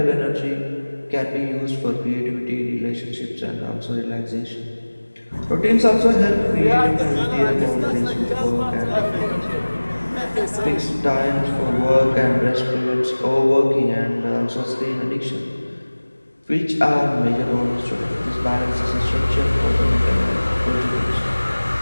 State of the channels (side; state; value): both; inverted; correlation -1.00